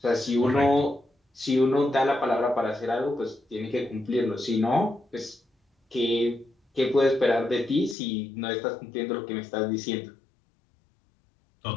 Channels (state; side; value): drops out; right; at 8.0 s